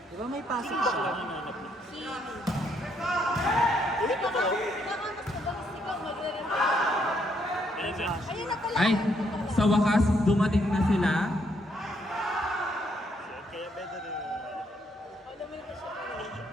Di ba may pasok siya? Si... Hindi pa ka. Baka mas madalas ikaw magre-replace. Ano dyan? Ayun na pala. Ay, sa wakas, dumating na sila. Kaya better rin. Alam mo yung siya.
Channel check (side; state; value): both; normal; correlation 0.73